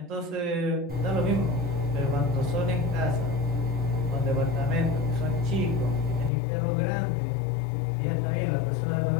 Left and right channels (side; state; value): right; drops out; at 6.3 s